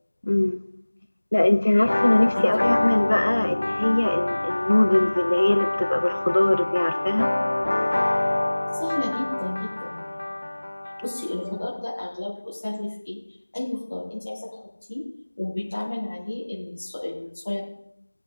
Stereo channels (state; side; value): inverted; both; correlation -1.00